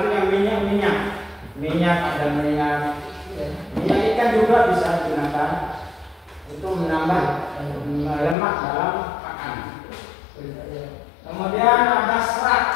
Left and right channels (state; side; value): drops out; right; at 8.3 s